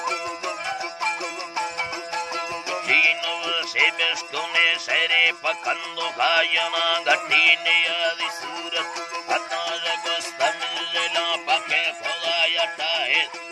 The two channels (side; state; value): both; identical; correlation 1.00